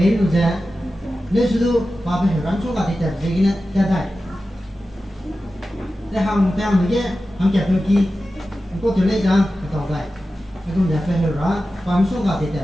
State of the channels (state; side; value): normal; both; correlation 0.94